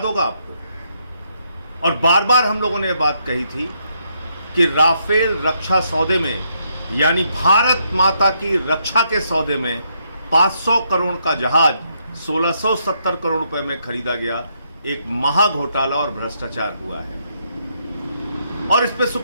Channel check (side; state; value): both; inverted; correlation -0.76